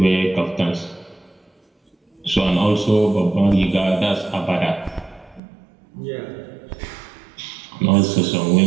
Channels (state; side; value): drops out; left; at 5.4 s